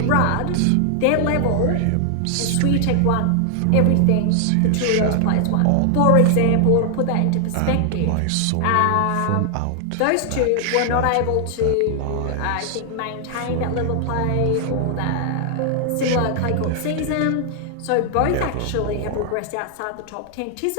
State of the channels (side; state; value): both; different; correlation 0.00